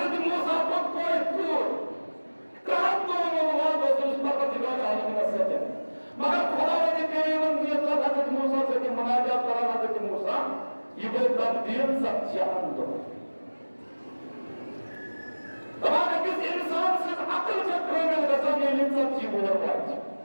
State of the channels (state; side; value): inverted; both; correlation -1.00